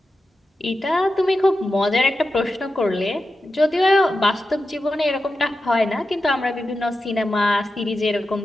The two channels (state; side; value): normal; both; correlation 0.91